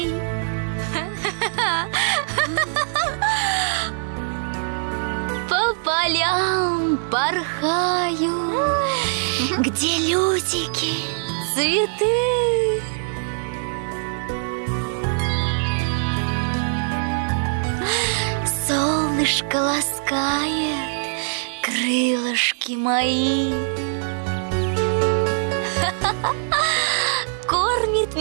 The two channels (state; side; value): silent; left; digital silence